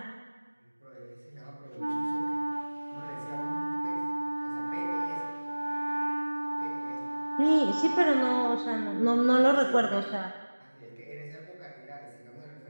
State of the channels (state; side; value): inverted; both; correlation -1.00